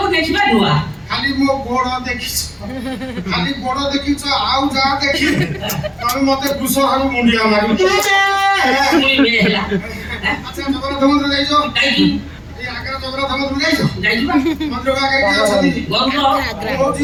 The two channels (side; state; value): both; identical; correlation 1.00